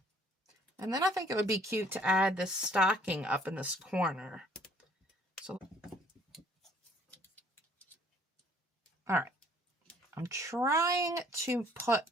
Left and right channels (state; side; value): normal; both; correlation 0.59